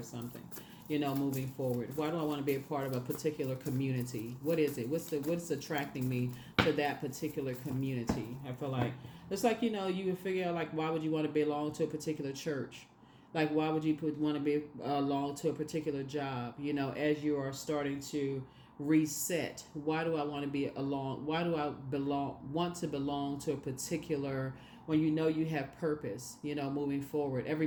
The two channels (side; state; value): both; identical; correlation 1.00